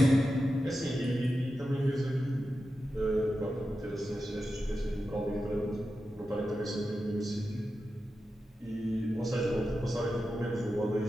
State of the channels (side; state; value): both; normal; correlation 0.91